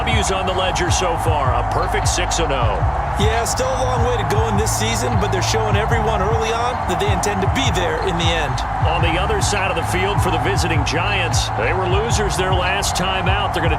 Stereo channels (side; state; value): both; identical; correlation 1.00